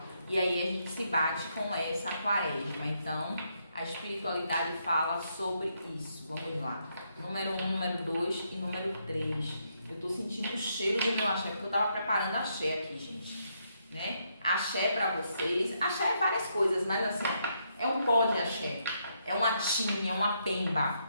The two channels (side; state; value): both; inverted; correlation -0.77